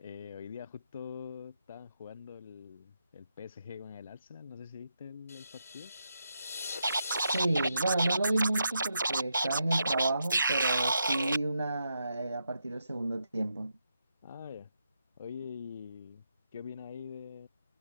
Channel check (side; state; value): both; inverted; correlation -0.83